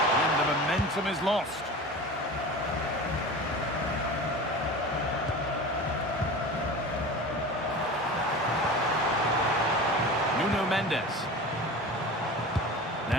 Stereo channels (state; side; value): normal; both; correlation 0.34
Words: And the momentum is lost. Mendes.